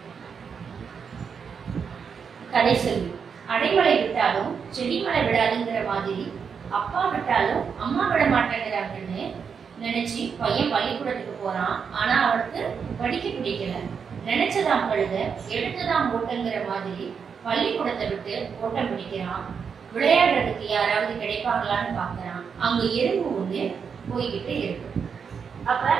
கதை சொல்லி அடைமழை விட்டாலும் செடிமழை விடாதுங்கிற மாதிரி அப்பா விட்டாலும் அம்மா விட மாட்டேங்கிறாங்கன்னு நினைச்சு பையன் பள்ளிக்கூடத்துக்கு போறான். ஆனா அவனுக்கு படிக்க பிடிக்கல. நினைச்சதாம் கழுத எடுத்துதான் ஓட்டங்கிற மாதிரி பள்ளிக்கூடத்தை விட்டு ஓட்டம் பிடிக்கிறான். விளையாடுறதுக்கு யாராவது கிடைப்பாங்களான்னு பாக்குறான். அங்க எறும்பு ஒண்ணு போய்கிட்டு இருக்கு. அப்ப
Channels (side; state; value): left; quieter; 6.4 dB